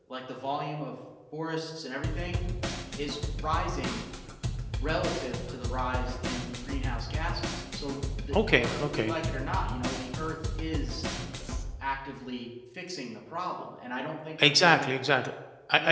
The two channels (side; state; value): both; identical; correlation 1.00